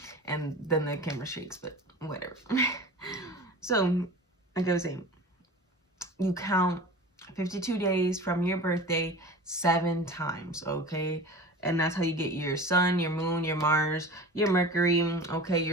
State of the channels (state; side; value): normal; both; correlation 0.36